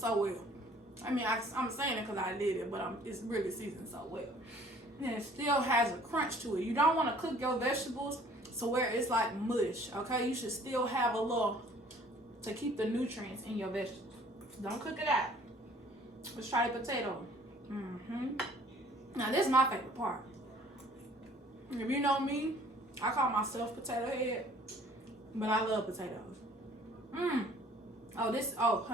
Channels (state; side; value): normal; both; correlation 0.55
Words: well. I mean, I'm saying it because I did it, but it's really seasoned so well. And it still has a crunch to it. You don't want to cook your vegetables so where it's like mush, okay? You should still have a little to keep the nutrients in your vegetables. Don't cook it out. Let's try the potato. Now, this is my favorite part. If you know me, I call myself potato head, but I love potatoes. Oh,